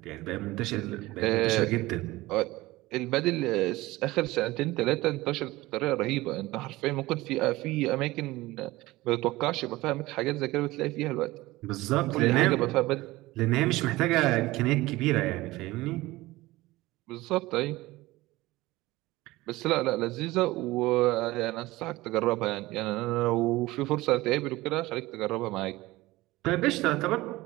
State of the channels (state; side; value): quieter; left; 19.2 dB